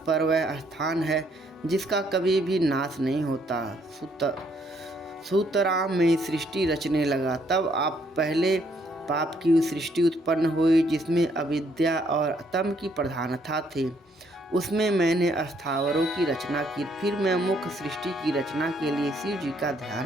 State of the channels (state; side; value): normal; both; correlation 0.69